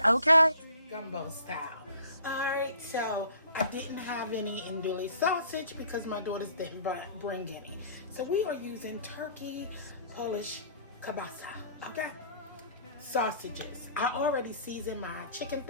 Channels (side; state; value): both; inverted; correlation -0.52